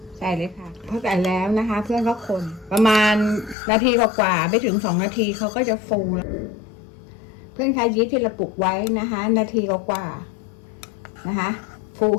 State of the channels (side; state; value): right; drops out; at 3.6 s